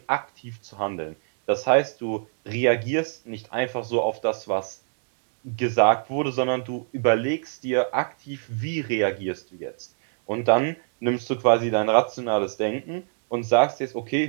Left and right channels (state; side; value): silent; left; digital silence